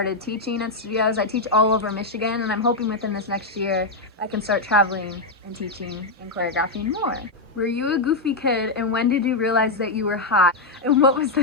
teaching at studios. I teach all over Michigan, and I'm hoping within this next year I can start traveling and teaching and choreographing more. Were you a goofy kid, and when did you realize that you were hot? And what was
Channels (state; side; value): quieter; right; 3.1 dB